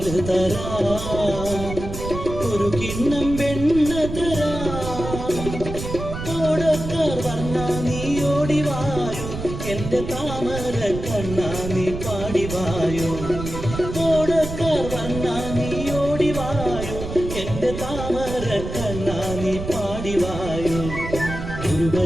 തരാം, ഒരു കിണ്ണം വെണ്ണ തരാം. ഓടക്കാർ വന്നാ നീ ഓടിവായോ, എന്റെ താമര കണ്ണാ നീ പാടിവായോ. ഓടക്കാർ വന്നാ നീ ഓടിവായോ, എന്റെ താമര കണ്ണാ നീ പാടിവായോ.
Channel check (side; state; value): right; noise; rumble, 7 dB below the sound